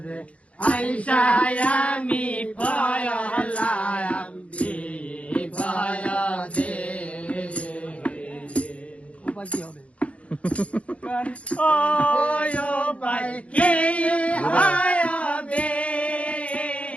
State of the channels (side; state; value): right; late; 0.063 ms